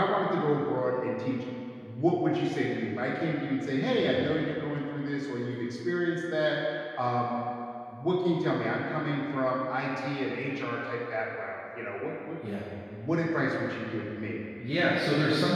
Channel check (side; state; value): both; identical; correlation 1.00